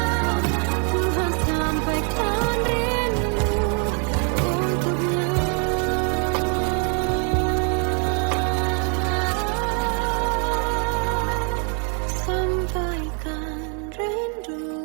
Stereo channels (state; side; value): quieter; left; 39.9 dB